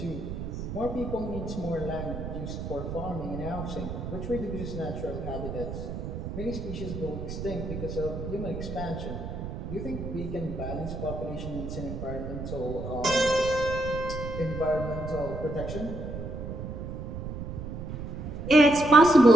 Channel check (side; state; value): right; noise; rumble, 6 dB below the sound